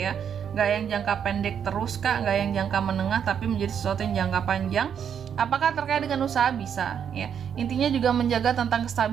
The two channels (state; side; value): quieter; left; 8.1 dB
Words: Gak yang jangka pendek terus Kak, gak yang jangka menengah, tapi menjadi sesuatu yang jangka panjang. Apakah terkait dengan usaha? Bisa ya. Intinya juga menjaga tentang